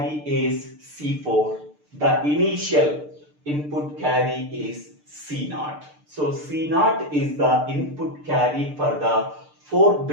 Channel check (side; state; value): left; late; 6.7 ms